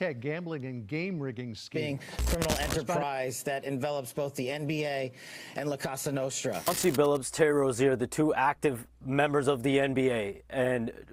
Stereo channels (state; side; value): identical; both; correlation 1.00